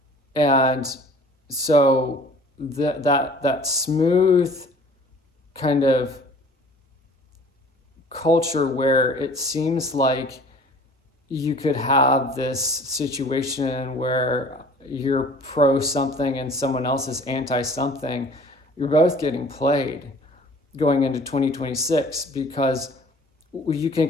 And so that smooth kind of culture where it seems like you could have this situation where you're pro something and someone else is anti something, you're both getting played going into 2026, because you can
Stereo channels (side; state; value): both; normal; correlation 0.49